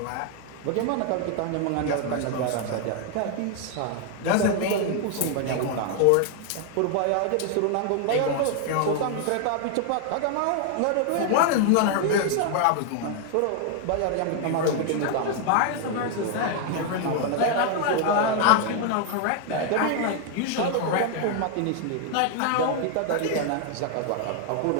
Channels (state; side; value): different; both; correlation 0.00